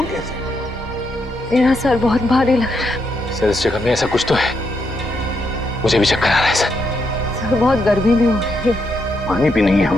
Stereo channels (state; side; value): normal; both; correlation 0.80